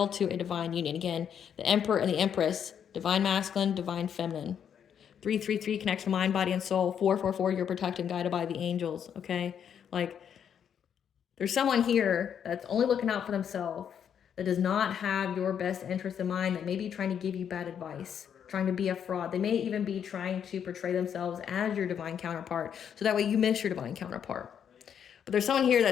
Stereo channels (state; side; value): quieter; right; 8.3 dB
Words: to a divine union. Again, the Emperor and the Empress, divine masculine, divine feminine. 333 connection, mind, body, and soul. 444, you're protected and guided by the angels, okay? Like, there's someone here that's only looking out for themselves, that does not have your best interest in mind, that may be trying to give you bad advice, trying to be a fraud. They may even be trying to portray themselves as your divine counterpart, so that way you miss your divine counterpart. But there's someone here